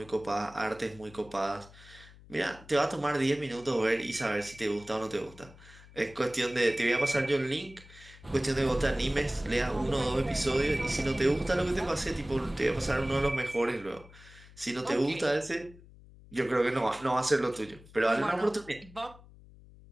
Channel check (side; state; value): left; noise; hum, 22 dB below the sound